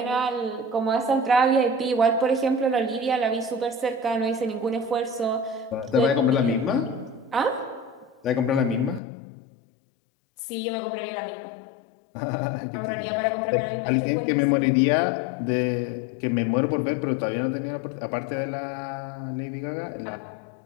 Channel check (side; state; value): right; drops out; at 9.0 s